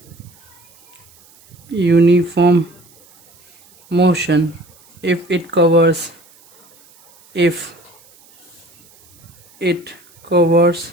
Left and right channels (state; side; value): noise; right; hiss, 28 dB below the sound